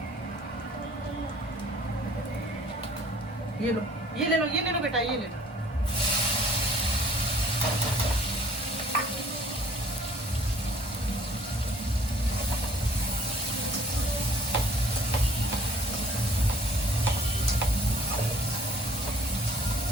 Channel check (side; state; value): both; normal; correlation 0.54